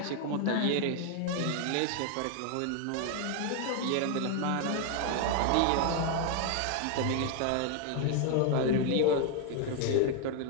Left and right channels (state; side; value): different; both; correlation 0.01